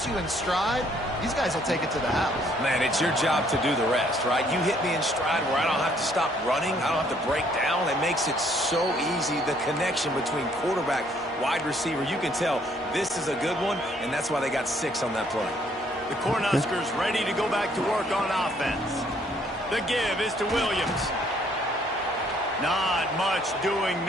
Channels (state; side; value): normal; both; correlation 0.65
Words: you in stride, these guys will take it to the house. Man, it's your job to do the rest, right? You hit me in stride where I don't have to stop running. I don't have to break down. It makes it so easy, the connection between quarterback, wide receiver. You can tell this is a good one, and that's why they got 6 on that play. The Cornhuskers ready to go back to work on offense. The give is to Williams. Not much doing